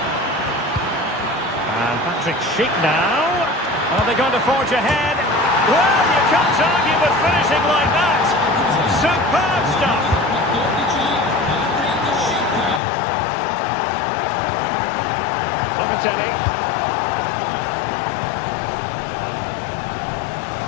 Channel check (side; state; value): right; drops out; at 12.8 s